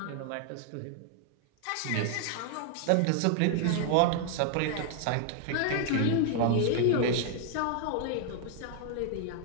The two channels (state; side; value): different; both; correlation -0.01